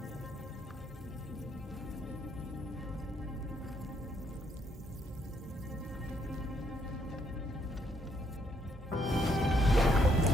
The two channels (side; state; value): both; normal; correlation 0.72